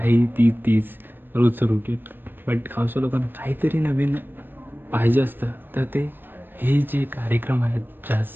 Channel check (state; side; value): late; left; 0.095 ms